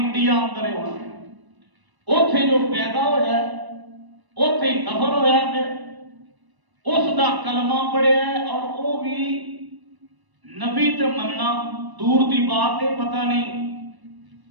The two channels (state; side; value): late; left; 1.0 ms